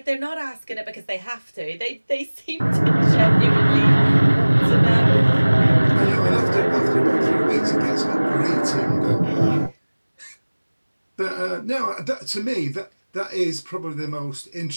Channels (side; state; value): both; inverted; correlation -1.00